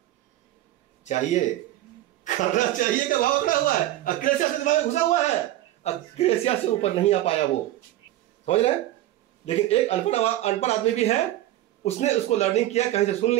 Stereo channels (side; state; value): left; quieter; 14.5 dB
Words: चाहिए करना चाहिए का भाव खड़ा हुआ है, अक्रेसिया से दिमाग में घुसा हुआ है, अक्रेसिया से ऊपर नहीं आ पाया वो, समझ रहे हैं। लेकिन एक अनपढ़ आदमी भी है, उसने उसको लर्निंग किया, कहीं से सुन